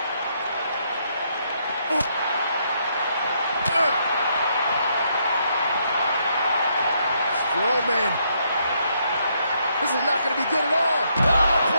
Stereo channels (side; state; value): both; inverted; correlation -0.74